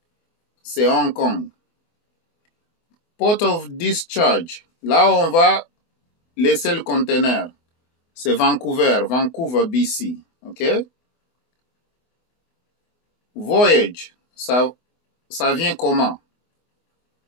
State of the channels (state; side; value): late; right; 24 ms